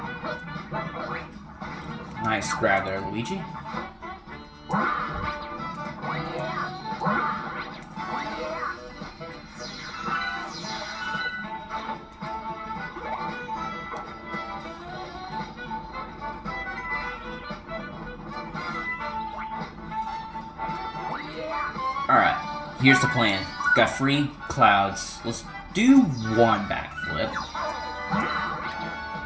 Nice grab there, Luigi. Alright, here's the plan. Got free clouds. Let's do one backflip.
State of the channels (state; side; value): identical; both; correlation 1.00